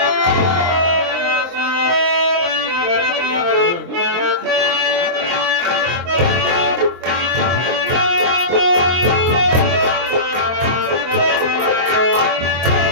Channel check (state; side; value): late; left; 23 ms